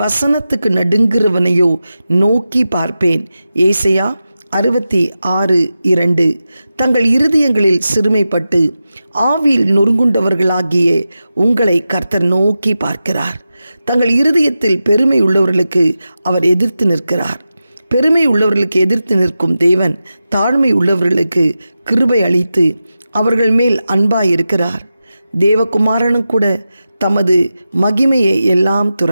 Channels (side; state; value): both; inverted; correlation -0.92